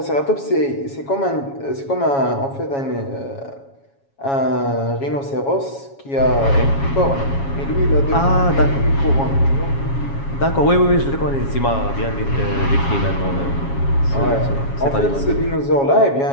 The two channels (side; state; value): right; late; 7.3 ms